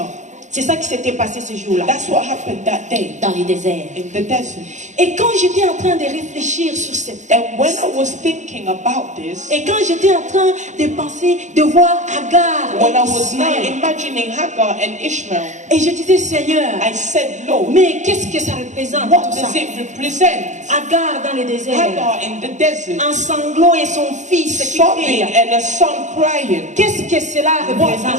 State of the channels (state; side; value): late; left; 0.35 ms